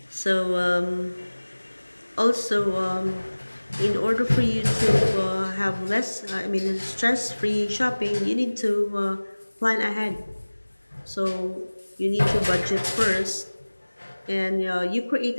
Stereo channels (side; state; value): both; inverted; correlation -1.00